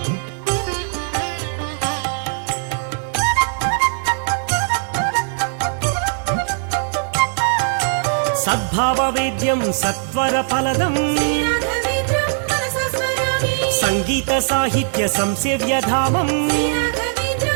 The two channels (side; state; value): left; silent; 66 dB below the other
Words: సద్భావవేద్యం సత్వర ఫలదం సంగీత సాహిత్య సంసేవ్యధామం